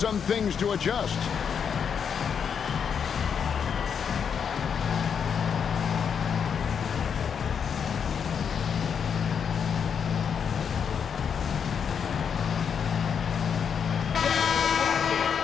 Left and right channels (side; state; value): right; quieter; 7.1 dB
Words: things to adjust.